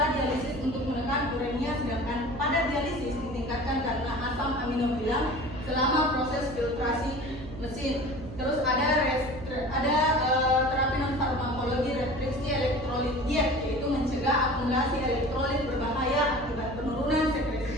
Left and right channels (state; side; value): noise; right; hum, 12 dB below the sound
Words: untuk menekan uremia, sedangkan pada dialisis ditingkatkan karena asam amino bilang selama proses filtrasi mesin. Terus ada terapi non farmakologi restriksi elektrolit diet, yaitu mencegah akumulasi elektrolit berbahaya akibat penurunan sekresi